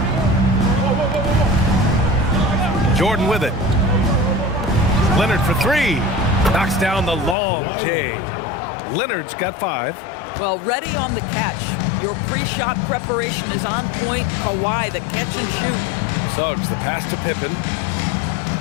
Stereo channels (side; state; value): right; drops out; at 7.4 s